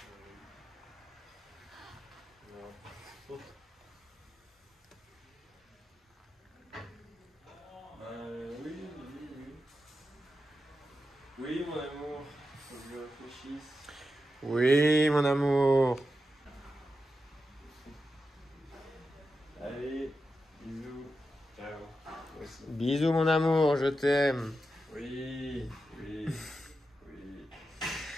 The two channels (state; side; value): normal; both; correlation 0.89